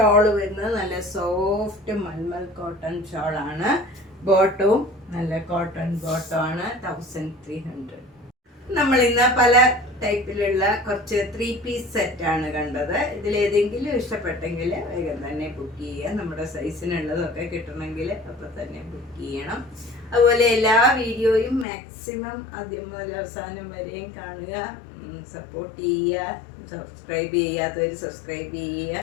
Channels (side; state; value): right; drops out; at 21.7 s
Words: വരുന്നത് നല്ല സോഫ്റ്റ് മൽമൽ കോട്ടൺ ഷോളാണ്. ബോട്ടവും നല്ല കോട്ടൺ ബോട്ടമാണ്. 1300. നമ്മൾ ഇന്ന് പല ടൈപ്പിലുള്ള കുറച്ച് 3 പീസ് സെറ്റാണ് കണ്ടത്. ഇതിലേതെങ്കിലും ഇഷ്ടപ്പെട്ടെങ്കിൽ വേഗം തന്നെ ബുക്ക് ചെയ്യുക. നമ്മുടെ സൈസിനുള്ളതൊക്കെ കിട്ടണമെങ്കിൽ അപ്പോൾ തന്നെ ബുക്ക് ചെയ്യണം. അതുപോലെ എല്ലാ വീഡിയോയും മാക്സിമം ആദ്യം മുതൽ അവസാനം വരെയും കാണുക, സപ്പോർട്ട് ചെയ്യുക. സബ്സ്ക്രൈബ് ചെയ്യാത്തവർ സബ്സ്ക്രൈബ് ചെയ്യുക.